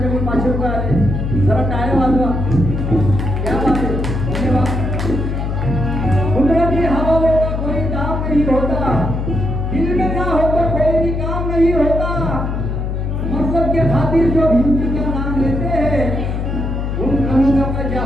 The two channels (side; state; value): left; noise; hum, 2 dB below the sound